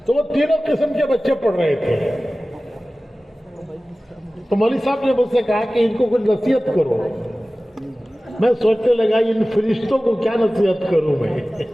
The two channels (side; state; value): both; normal; correlation 0.97